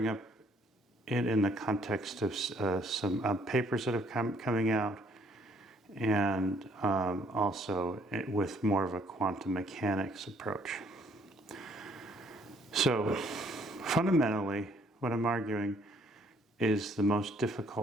up it in the context of some papers that have coming out, and also with more of a quantum mechanics approach. So fundamentally, what I'm arguing is the most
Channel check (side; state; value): both; normal; correlation 0.65